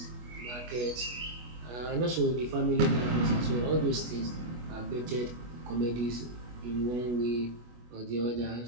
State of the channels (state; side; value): late; left; 25 ms